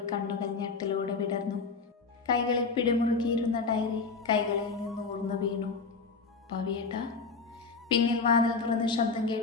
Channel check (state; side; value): quieter; right; 4.6 dB